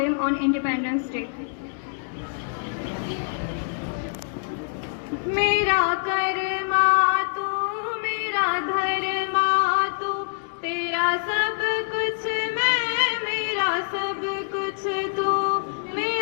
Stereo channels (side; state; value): right; silent; digital silence